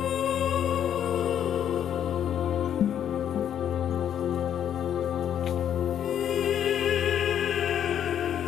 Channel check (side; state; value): right; quieter; 9.7 dB